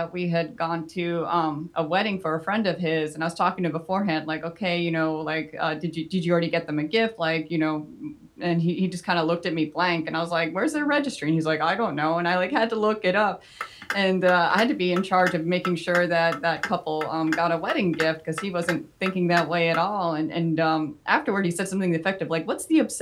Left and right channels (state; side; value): identical; both; correlation 1.00